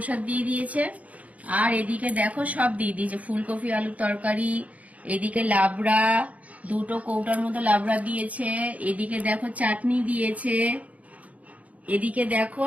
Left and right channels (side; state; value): left; late; 0.070 ms